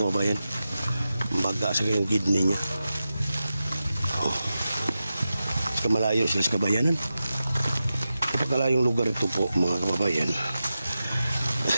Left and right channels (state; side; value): inverted; both; correlation -0.92